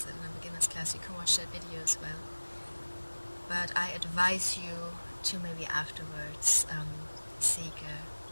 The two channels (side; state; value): both; inverted; correlation -1.00